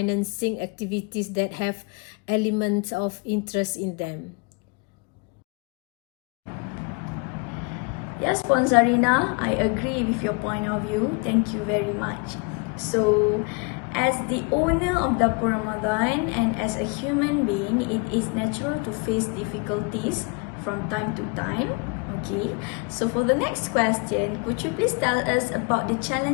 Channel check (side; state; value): right; quieter; 32.1 dB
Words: activities that have elements of interest in them. Yes, Puan Zarina, I agree with your point of view. Thank you very much. So, as the owner of Dapur Ramadan and as a human being, it is natural to face difficulties from time to time. Okay, so for the next question, could you please tell us about the